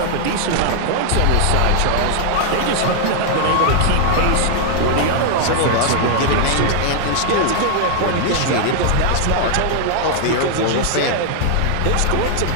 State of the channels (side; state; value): both; different; correlation 0.00